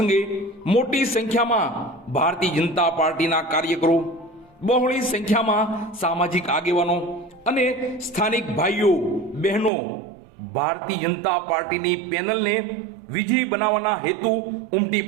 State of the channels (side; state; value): left; drops out; at 9.7 s